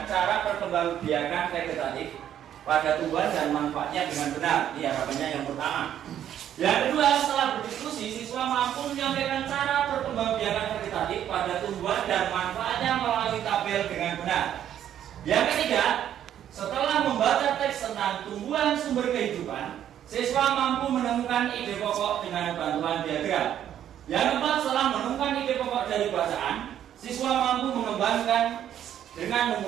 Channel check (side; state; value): left; quieter; 10.5 dB